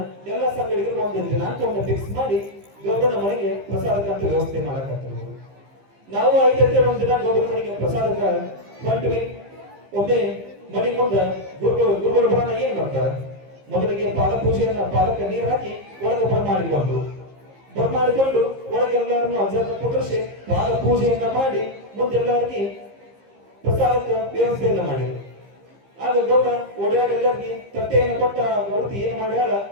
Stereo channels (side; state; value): left; late; 15 ms